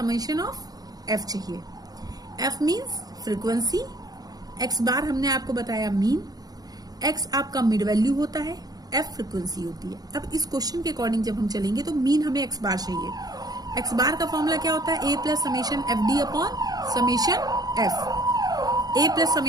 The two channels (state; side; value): late; left; 0.19 ms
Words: ऑफ एफ चाहिए। एफ मीन्स फ्रीक्वेंसी, एक्स बार हमने आपको बताया मीन, एक्स आपका मिड वैल्यू होता है, एफ फ्रीक्वेंसी होती है। अब इस क्वेश्चन के अकॉर्डिंग जब हम चलेंगे तो मीन हमें एक्स बार चाहिए। एक्स बार का फॉर्मूला क्या होता है? A plus summation F D upon summation F, A plus